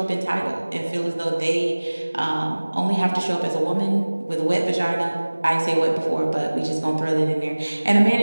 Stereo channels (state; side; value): inverted; both; correlation -1.00